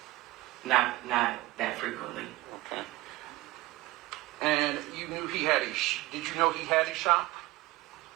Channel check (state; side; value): quieter; left; 18.7 dB